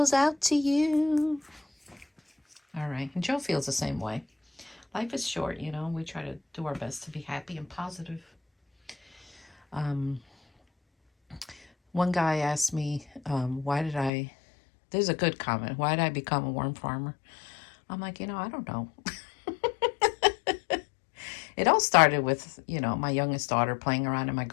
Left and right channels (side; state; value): right; drops out; at 14.1 s